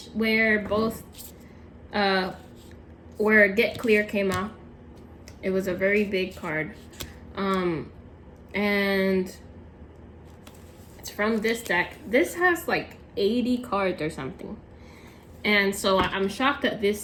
where both where Get Clear came out. It was a very big card. And it's from this deck. This has like 80 cards or something. And so I'm shocked that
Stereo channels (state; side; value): identical; both; correlation 1.00